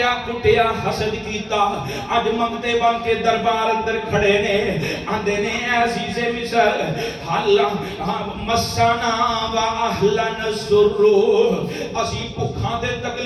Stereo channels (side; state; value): both; identical; correlation 1.00